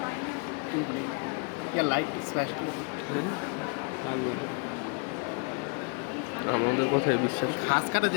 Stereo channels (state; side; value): quieter; right; 35.7 dB